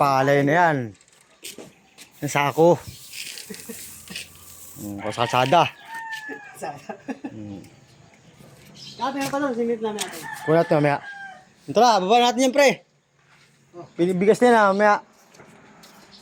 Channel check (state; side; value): identical; both; correlation 1.00